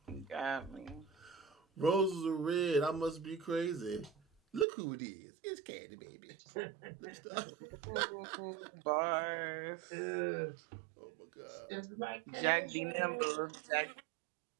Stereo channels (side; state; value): left; drops out; at 4.7 s